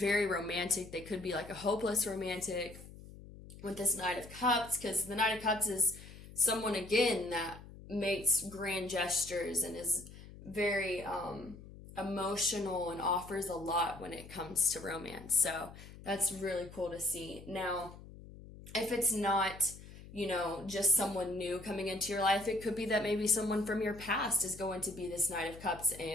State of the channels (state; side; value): noise; left; hum, 17 dB below the sound